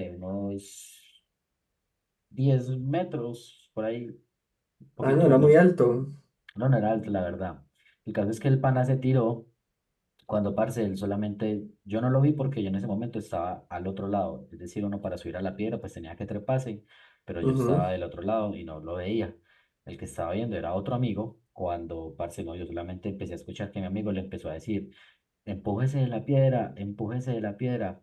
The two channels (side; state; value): both; identical; correlation 1.00